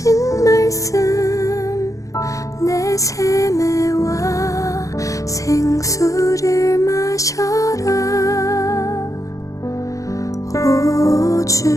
말씀 내 세매와 생수를 마셔라. 오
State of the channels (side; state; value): right; late; 0.16 ms